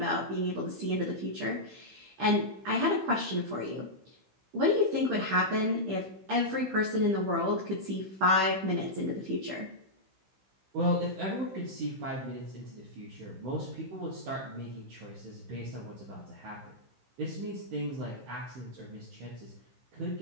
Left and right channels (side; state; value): left; late; 16 ms